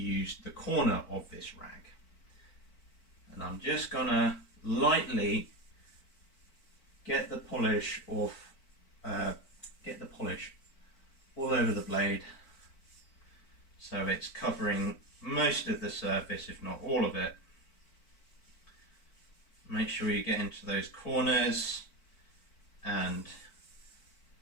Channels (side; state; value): right; late; 4.5 ms